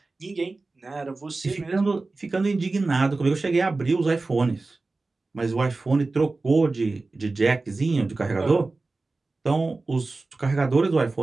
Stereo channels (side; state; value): left; quieter; 3.5 dB